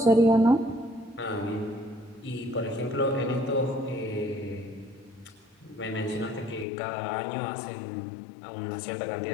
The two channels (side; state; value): right; drops out; at 6.7 s